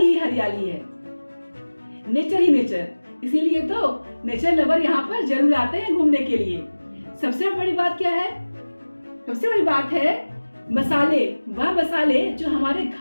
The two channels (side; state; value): both; inverted; correlation -1.00